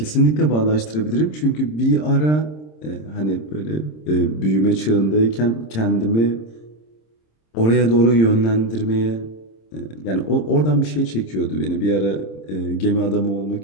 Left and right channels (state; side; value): late; right; 26 ms